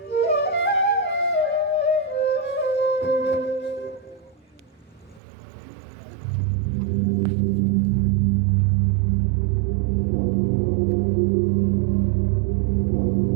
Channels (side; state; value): left; drops out; at 5.2 s